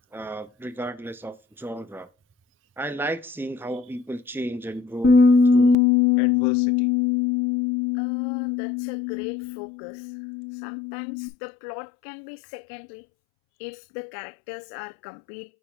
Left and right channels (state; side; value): drops out; right; at 5.8 s